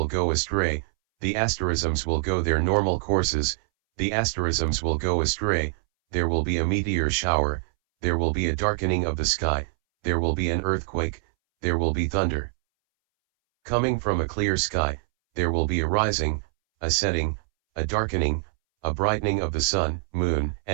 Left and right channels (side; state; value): left; silent; 62 dB below the other